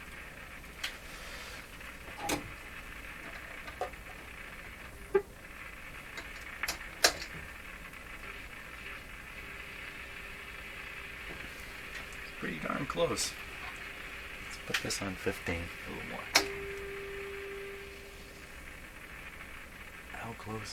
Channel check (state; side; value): identical; both; correlation 1.00